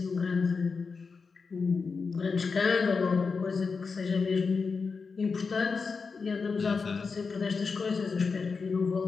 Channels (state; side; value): quieter; right; 4.9 dB